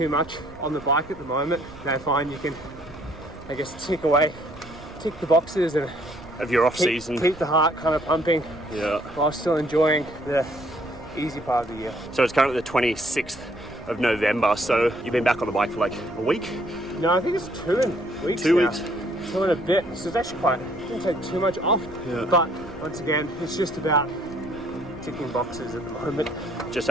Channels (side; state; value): right; noise; rumble, 20 dB below the sound